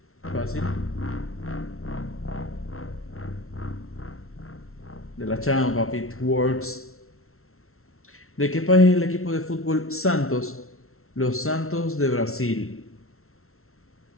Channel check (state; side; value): late; right; 0.62 ms